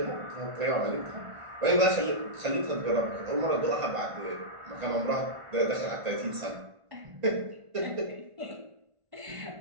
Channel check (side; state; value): left; late; 1.5 ms